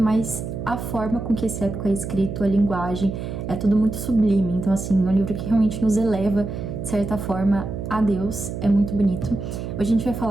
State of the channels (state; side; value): noise; right; hum, 6 dB below the sound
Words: mas a forma com que esse épico é escrito, a linguagem, é tudo muito sublime. Então, assim, é um livro que realmente nos eleva, de certa forma, a Deus. É muito bonito. Hoje a gente vai